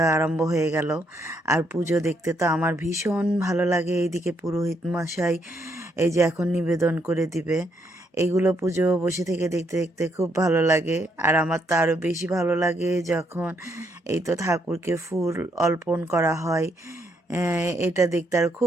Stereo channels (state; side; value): normal; both; correlation 0.74